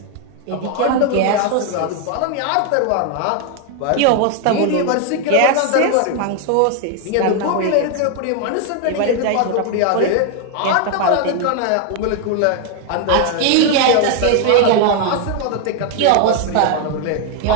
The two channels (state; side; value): different; both; correlation 0.01